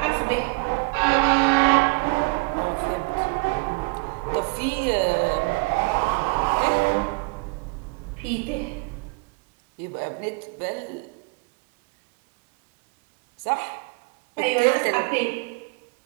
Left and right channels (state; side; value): quieter; left; 29.0 dB